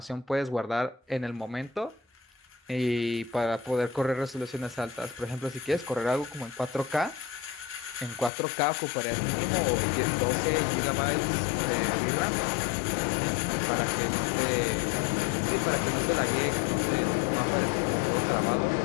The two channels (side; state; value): right; drops out; at 8.3 s